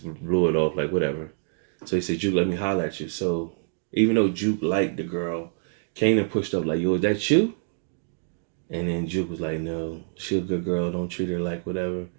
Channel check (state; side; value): silent; left; digital silence